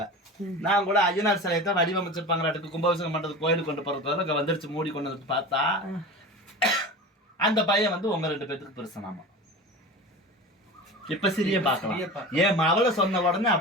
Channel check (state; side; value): normal; both; correlation 0.32